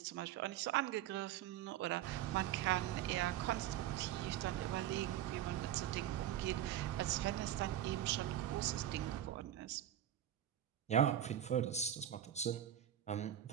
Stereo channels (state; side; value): quieter; left; 11.6 dB